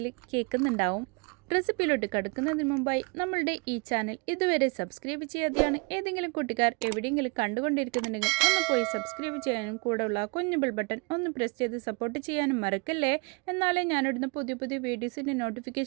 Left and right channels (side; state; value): left; quieter; 31.3 dB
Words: കേൾക്കുന്നുണ്ടാവും. റെസിപ്പിയിലോട്ട് കടക്കുന്നതിന് മുമ്പായി നമ്മളുടെ ഈ ചാനൽ ഇതുവരെ സബ്സ്ക്രൈബ് ചെയ്യാതെയാണ് ഏതെങ്കിലും കൂട്ടുകാർ എവിടെയെങ്കിലും കണ്ടുകൊണ്ടിരിക്കുന്നുണ്ടെങ്കിൽ ഒന്ന് പോയി സബ്സ്ക്രൈബ് ചെയ്യാനും കൂടെയുള്ള കുഞ്ഞു ബെൽ ബട്ടൺ ഒന്ന് പ്രസ് ചെയ്ത് സപ്പോർട്ട് ചെയ്യാനും മറക്കല്ലേ. എന്നാലേ ഞാനിടുന്ന പുതിയ പുതിയ വീഡിയോസിൻ്റെ